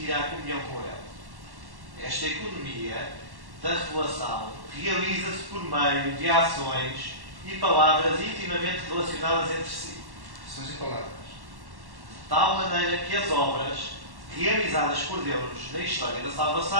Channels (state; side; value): late; left; 1.1 ms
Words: à comunhão com ele. Esta economia da revelação realiza-se por meio de ações e palavras intimamente relacionadas entre si. Ações e palavras. De tal maneira que as obras realizadas por Deus na história da